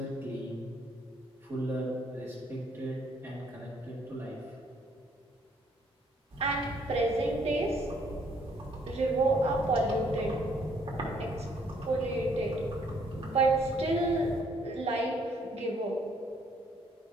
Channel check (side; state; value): both; normal; correlation 0.66